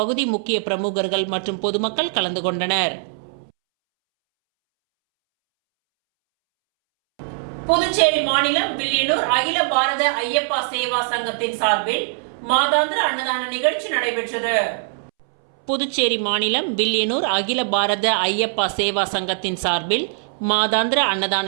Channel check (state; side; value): silent; left; 65 dB below the other